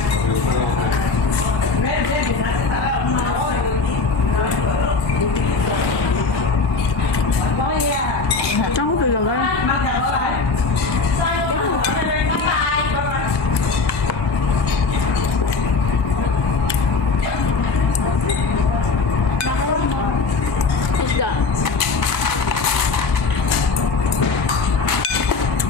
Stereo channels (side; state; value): right; quieter; 4.3 dB